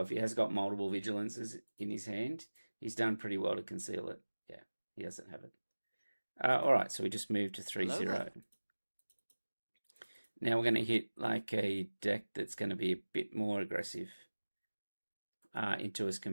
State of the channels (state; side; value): inverted; both; correlation -1.00